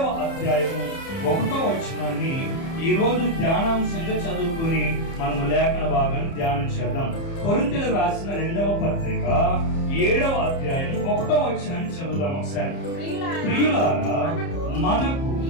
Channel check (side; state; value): right; late; 30 ms